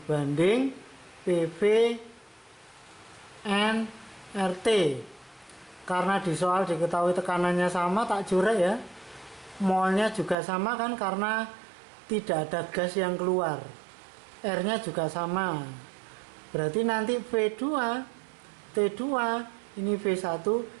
PV N RT. Karena di soal diketahui tekanannya sama, tak curek ya. Molnya juga sama kan, karena tidak ada gas yang keluar. R-nya juga sama. Berarti nanti V2, T2, ini V1,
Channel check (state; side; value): drops out; left; at 10.4 s